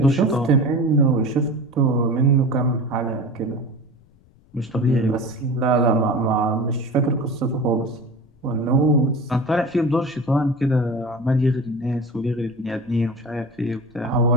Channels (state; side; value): noise; left; rumble, 29 dB below the sound